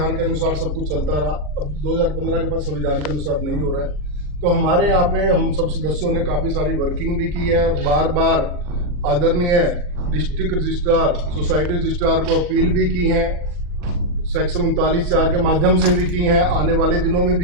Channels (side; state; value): left; late; 40 ms